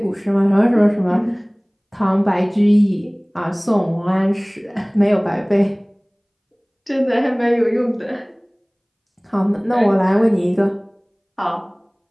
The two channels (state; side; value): identical; both; correlation 1.00